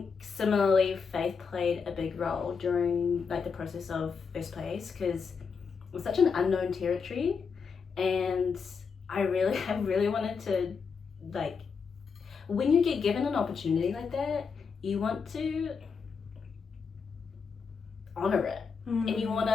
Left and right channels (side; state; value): right; quieter; 5.6 dB